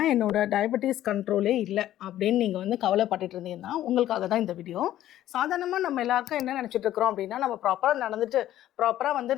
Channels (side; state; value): right; quieter; 13.0 dB